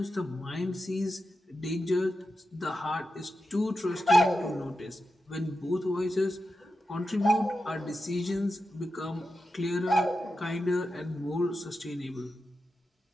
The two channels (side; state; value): both; normal; correlation 0.90